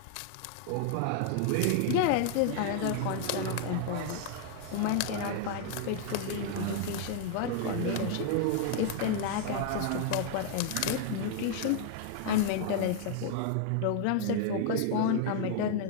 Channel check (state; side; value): different; both; correlation 0.00